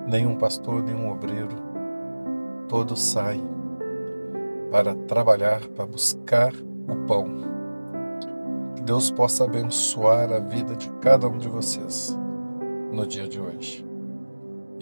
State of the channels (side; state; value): both; inverted; correlation -1.00